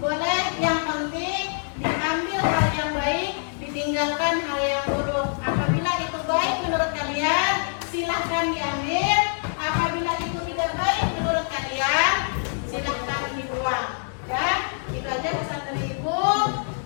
Boleh, yang penting diambil hal yang baik, ditinggalkan hal yang buruk. Apabila itu baik menurut kalian, silahkan diambil. Apabila itu tidak baik menurut kalian, silahkan dibuang. Ya, itu aja pesan dari Ibu.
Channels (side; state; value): right; silent; 62 dB below the other